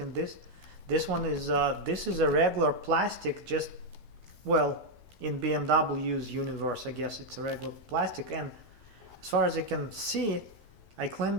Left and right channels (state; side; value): late; left; 13 ms